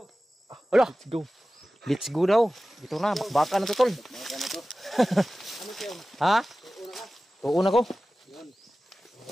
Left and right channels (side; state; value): both; normal; correlation 0.96